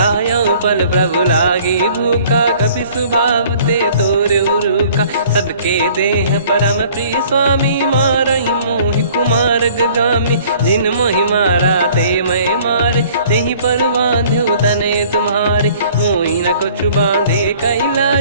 पल प्रभु लागी भूखा कपि सुभाव ते तोर उरुखा सबके देह परम प्रिय स्वामी मारई मोहि कुमार गगामी जिन मोहि मारा ते मैं मारे तेहि पर बांधे उदने तुम्हारे मोहि न कुछ बांधे कैला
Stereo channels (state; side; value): inverted; both; correlation -0.54